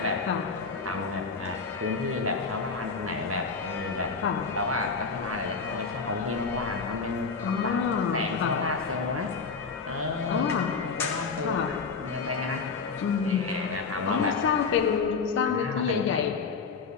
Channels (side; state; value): right; quieter; 4.9 dB